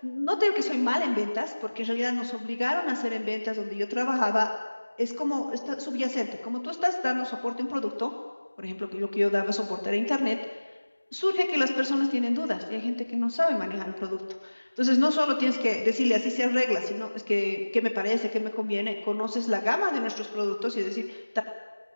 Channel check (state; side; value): inverted; both; correlation -1.00